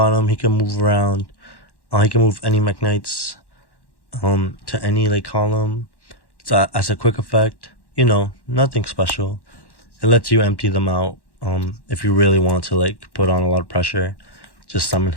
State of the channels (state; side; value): late; right; 1.1 ms